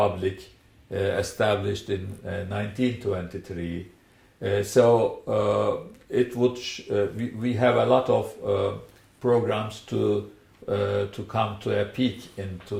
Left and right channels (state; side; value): identical; both; correlation 1.00